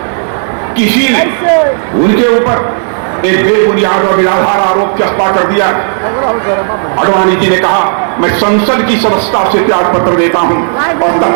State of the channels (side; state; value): left; silent; digital silence